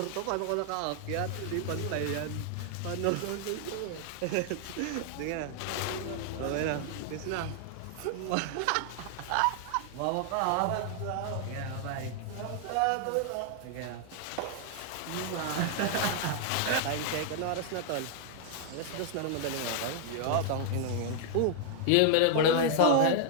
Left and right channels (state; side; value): different; both; correlation 0.00